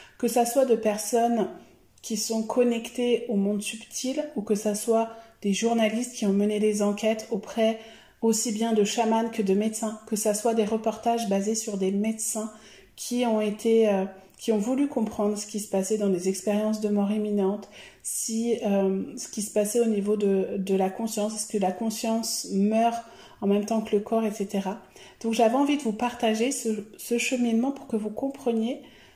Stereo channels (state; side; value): identical; both; correlation 1.00